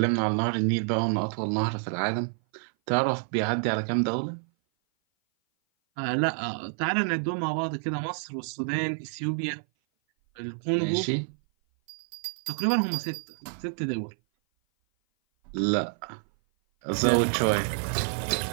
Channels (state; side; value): silent; left; 56 dB below the other